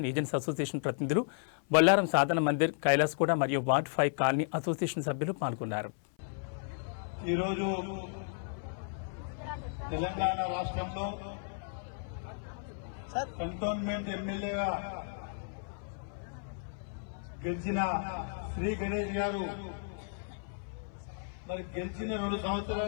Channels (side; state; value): right; silent; 55 dB below the other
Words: ఏజెంట్స్ అసోసియేషన్ ప్రతినిధులు, బొల్లారం సాధన మందిర్, కైలాస్గూడ మరియు వార్డ్ 5 కాలనీ అసోసియేషన్ సభ్యులు పాల్గొన్నారు. ఈరోజు తెలంగాణ రాష్ట్రంలో కంటోన్మెంట్ ఎమ్మెల్యేగా గెలిచిన శ్రీ గణేష్ గారు మరి గెలిచిన 2